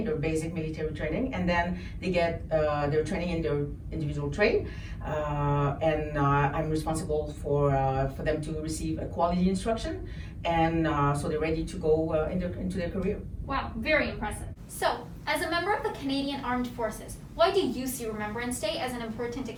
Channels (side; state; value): both; identical; correlation 1.00